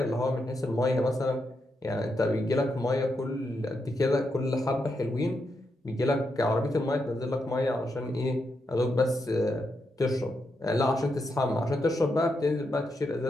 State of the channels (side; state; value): both; normal; correlation 0.83